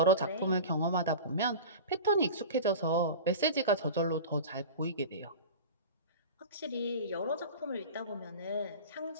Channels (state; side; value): inverted; both; correlation -0.32